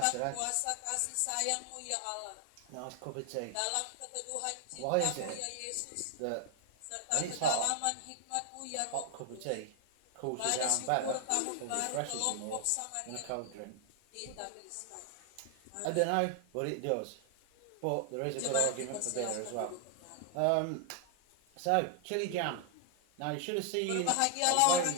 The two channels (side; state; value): both; different; correlation 0.00